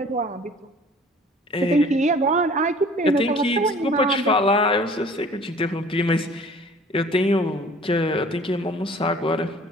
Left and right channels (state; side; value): normal; both; correlation 0.49